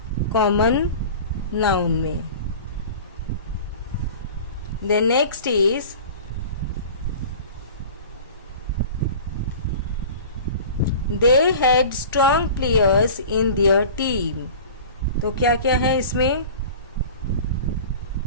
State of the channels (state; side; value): inverted; both; correlation -0.39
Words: कॉमन नाउन में. The next is they had strong players in their team. तो क्या क्या है इसमें?